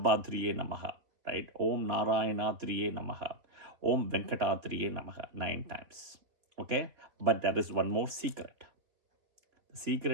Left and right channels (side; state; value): left; late; 3.9 ms